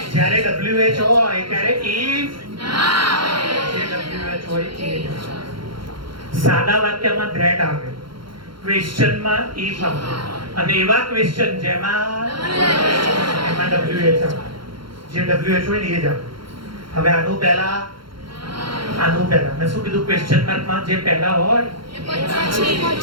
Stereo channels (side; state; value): left; late; 0.73 ms